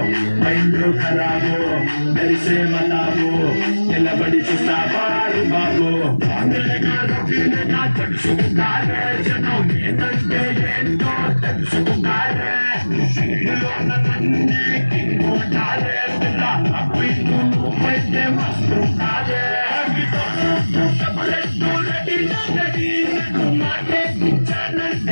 మైండ్ ఖరాబో మెరిసే బతాబో నిలబడి చూస్తావారు బాబో. తెలుసుకున్నారే జనం ఏంటంటే ఏంటో తెలుసుకున్నారే.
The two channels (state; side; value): inverted; both; correlation -1.00